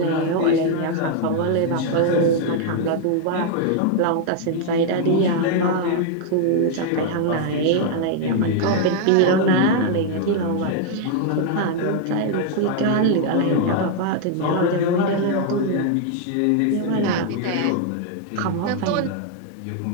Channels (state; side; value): different; both; correlation 0.00